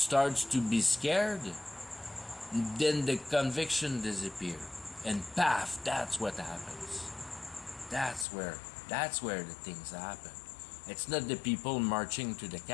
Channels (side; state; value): right; drops out; at 8.2 s